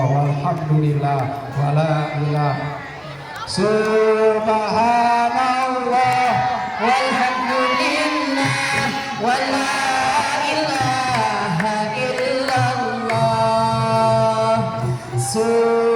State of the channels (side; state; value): both; identical; correlation 1.00